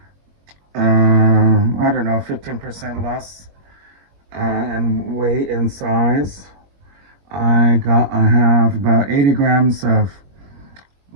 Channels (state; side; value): late; left; 21 ms